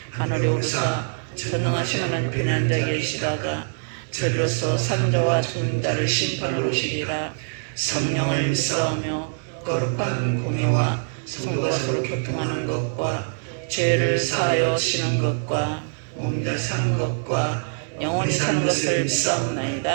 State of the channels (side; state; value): left; silent; digital silence